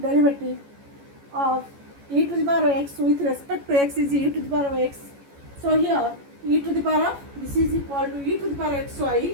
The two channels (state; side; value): late; left; 14 ms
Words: of e to the power of x with respect to x is e to the power of x. So here e to the power of, this is equal to e to the power of